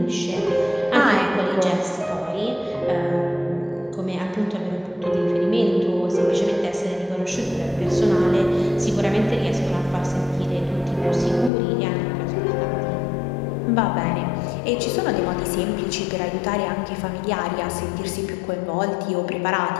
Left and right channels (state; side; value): drops out; right; at 11.5 s